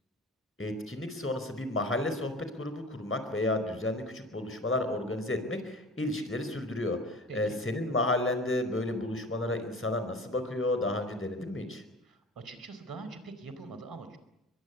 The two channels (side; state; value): both; normal; correlation 0.39